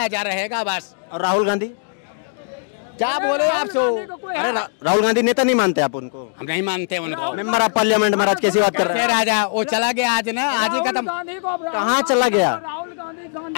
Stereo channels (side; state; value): right; silent; digital silence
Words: रहेगा बस। और राहुल गांधी क्या बोले आप तो? अरे राहुल गांधी नेता नहीं मानते आप उनको? हम नहीं मानते उनको। मेंबर ऑफ पार्लियामेंट में आज कैसी बात कर रहे हैं? राजा वो चला गया आज ना, आज ही खत्म। कहाँ चला गया?